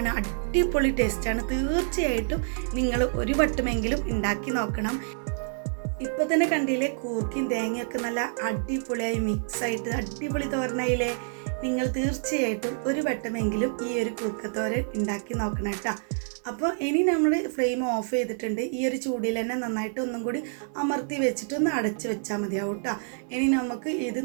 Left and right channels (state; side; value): silent; left; 60 dB below the other